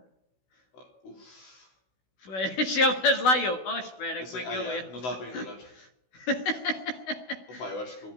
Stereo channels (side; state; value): right; late; 16 ms